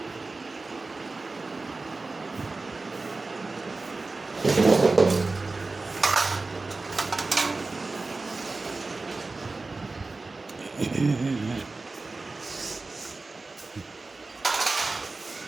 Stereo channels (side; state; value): left; quieter; 3.6 dB